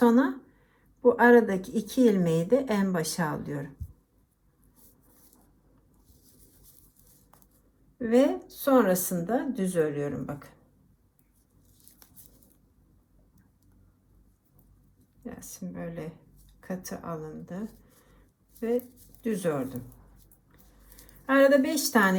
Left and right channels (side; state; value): both; identical; correlation 1.00